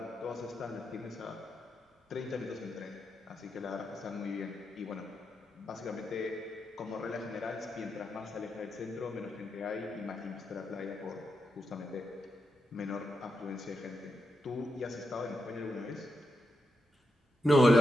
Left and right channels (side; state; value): both; normal; correlation 0.86